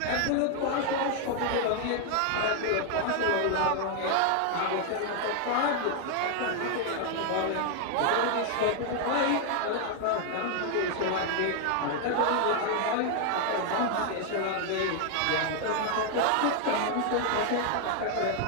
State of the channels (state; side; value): different; both; correlation 0.00